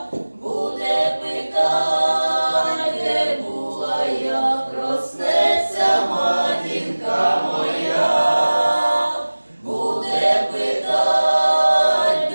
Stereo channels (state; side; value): inverted; both; correlation -1.00